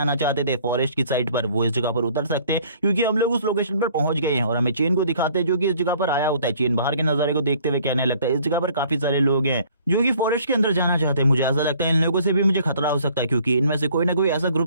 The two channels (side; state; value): both; inverted; correlation -0.56